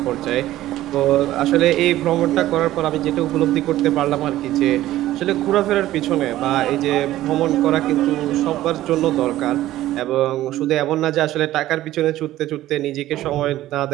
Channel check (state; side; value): quieter; left; 14.7 dB